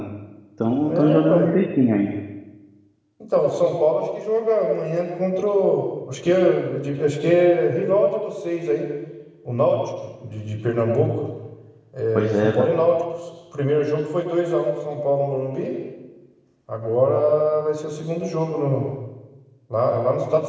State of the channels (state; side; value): identical; both; correlation 1.00